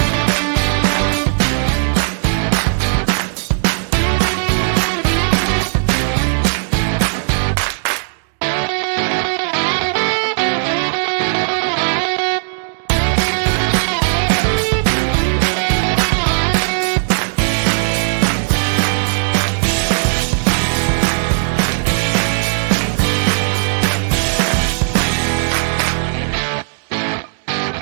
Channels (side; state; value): left; silent; digital silence